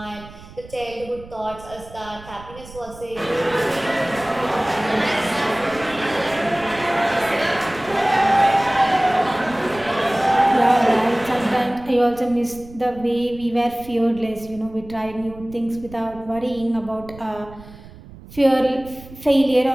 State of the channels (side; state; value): right; noise; rumble, 18 dB below the sound